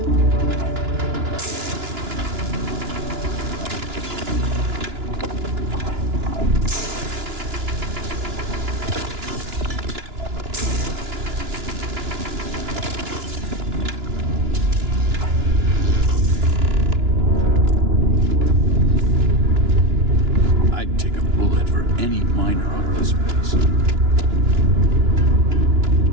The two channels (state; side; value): late; left; 2.9 ms